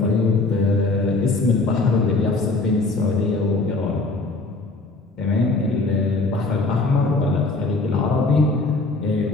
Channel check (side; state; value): right; quieter; 3.3 dB